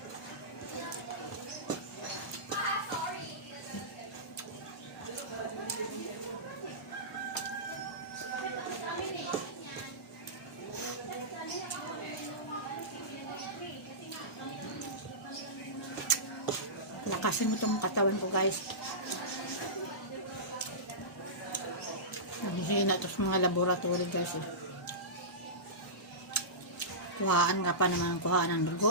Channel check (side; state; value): both; normal; correlation -0.18